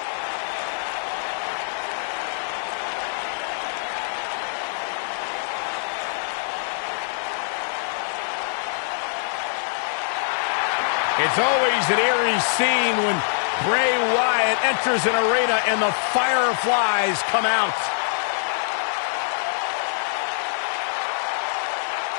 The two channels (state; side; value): silent; right; digital silence